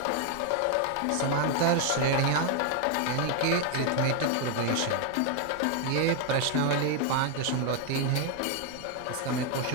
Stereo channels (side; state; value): both; different; correlation 0.01